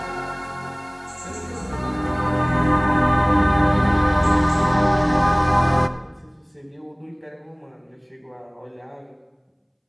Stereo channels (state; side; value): identical; both; correlation 1.00